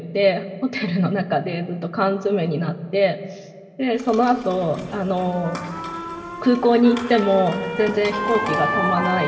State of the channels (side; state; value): both; identical; correlation 1.00